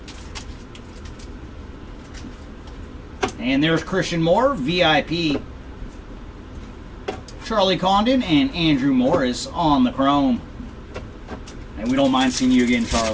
And there's Christian Moore, VIP. Charlie Condon and Andrew Morris on the Chrome. And we don't mind seeing you again,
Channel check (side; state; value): both; identical; correlation 1.00